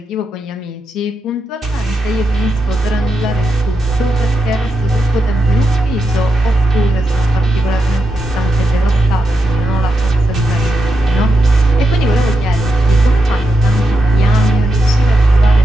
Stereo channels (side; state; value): both; normal; correlation 0.86